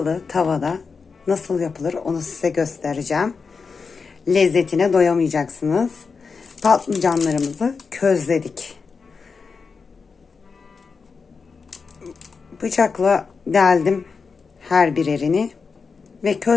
tavada nasıl yapılır onu size göstereceğim. Lezzetine doyamayacaksınız. Patlıcanlarımızı közledik. Bıçakla deldim her birerini ve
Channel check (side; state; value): right; quieter; 5.0 dB